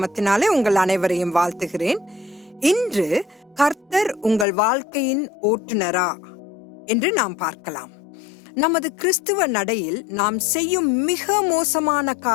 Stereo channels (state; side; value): drops out; right; at 4.5 s